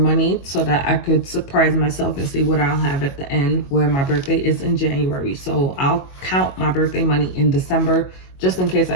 so that I could surprise myself and see what I'll have at the end, where my birthday is in January. So I'll count my birthday money in December, just in case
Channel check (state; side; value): late; right; 22 ms